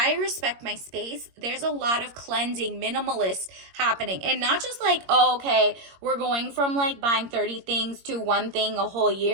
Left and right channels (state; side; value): late; left; 21 ms